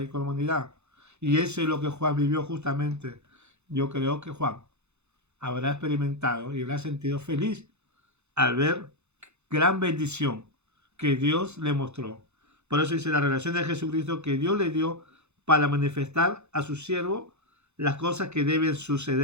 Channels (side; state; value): left; late; 0.81 ms